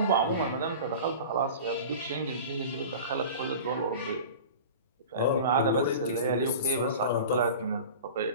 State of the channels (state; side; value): inverted; both; correlation -0.36